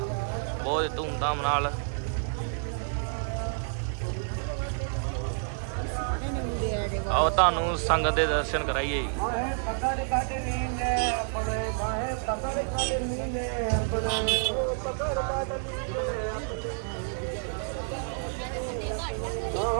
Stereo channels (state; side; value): silent; left; 58 dB below the other